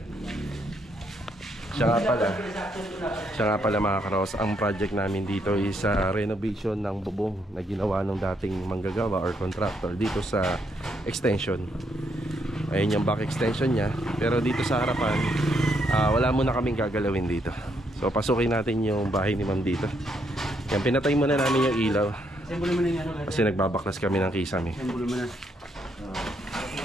Siya nga pala mga Karos, ang project namin dito is renovation ng bubong na ginawa ng dating manggagawa or contractor dito sa extension. Ayun yung back extension niya. Pero dito sa harapan, wala muna kaming gagalawin dito. So pasukin natin yung bahay ni Ma'am dito. Yan, pinatay muna namin yung ilaw. Kasi nagbabaklas kami ng kisame.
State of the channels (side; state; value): both; normal; correlation 0.75